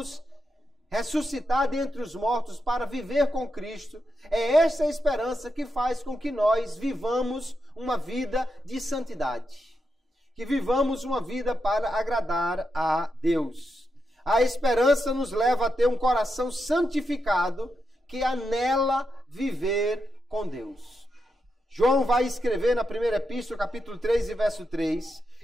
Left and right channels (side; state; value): both; normal; correlation 0.85